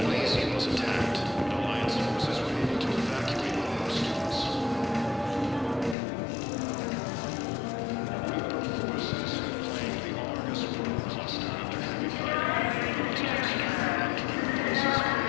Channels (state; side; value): drops out; right; at 6.0 s